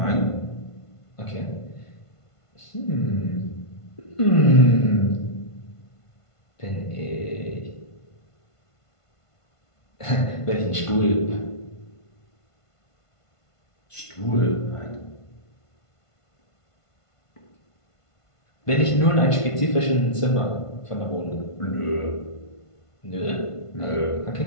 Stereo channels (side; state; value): right; late; 1.5 ms